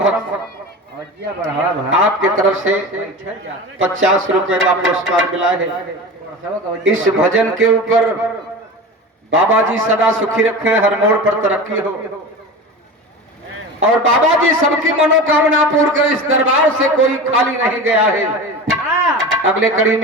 आपके तरफ से 50 रुपए का पुरस्कार मिला है। इस भजन के ऊपर बाबा जी सदा सुखी रखे, हर मोड़ पर तरक्की हो और बाबा जी सबकी मनोकामना पूर्ण कर। इस दरबार से कोई खाली नहीं गया है। अगले कड़ी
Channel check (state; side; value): normal; both; correlation 0.30